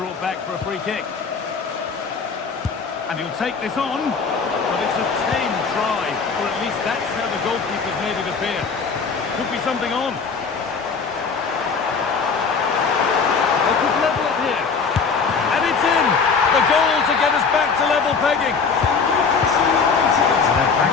brought back for a free kick. And he'll take this on, but it's a tame try, or at least that's how the goalkeeper's made it appear. Could be something on. They could level it here. And it's in! The goal to get us back to level pegging. And they're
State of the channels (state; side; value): quieter; right; 5.3 dB